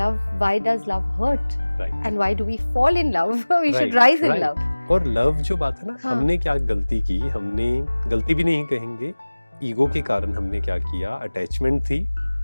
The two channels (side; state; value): both; inverted; correlation -1.00